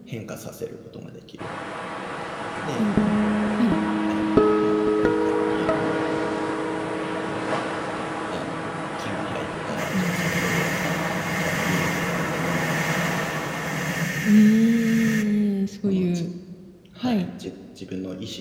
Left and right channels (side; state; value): both; identical; correlation 1.00